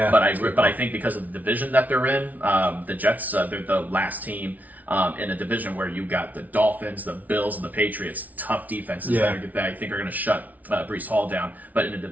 but I think because of the division that they're in, the Jets they're the last team in a division where you got the Dolphins, the Bills, and the Patriots, tough defenses that I think are going to shut Breece Hall down. But in a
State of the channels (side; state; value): left; late; 0.075 ms